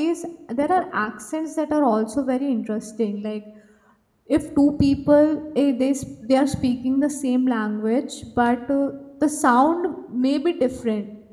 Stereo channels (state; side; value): identical; both; correlation 1.00